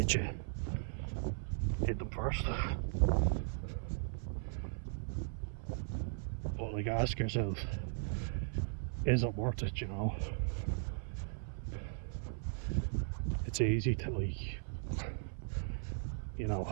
you, hit them first. But like, ask yourself, is it worth it, you know? It's easy to, like, you know,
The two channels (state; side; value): silent; left; 53 dB below the other